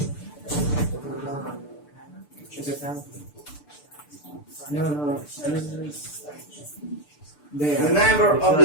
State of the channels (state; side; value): late; right; 6.8 ms